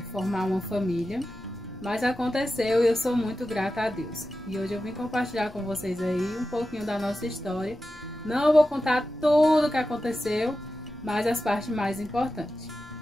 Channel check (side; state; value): left; noise; rumble, 22 dB below the sound